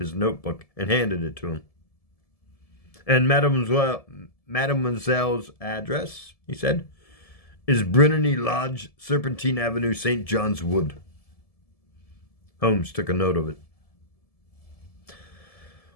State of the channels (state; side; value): late; right; 1.7 ms